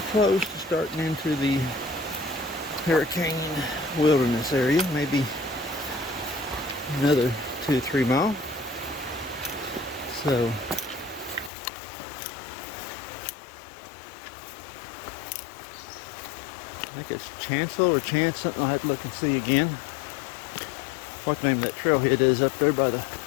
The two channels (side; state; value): right; drops out; at 11.5 s